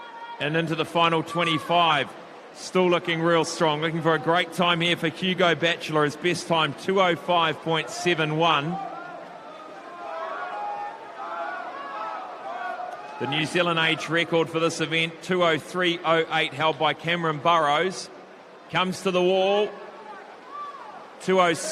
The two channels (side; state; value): both; identical; correlation 1.00